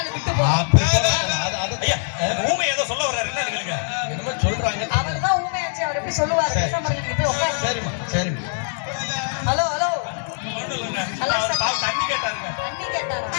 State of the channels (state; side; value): silent; right; digital silence